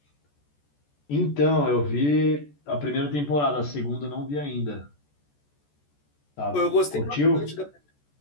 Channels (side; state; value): right; late; 14 ms